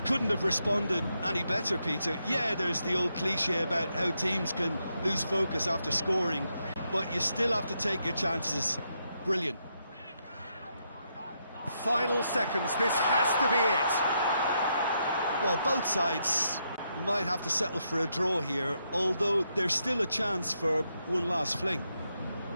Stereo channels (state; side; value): inverted; both; correlation -0.80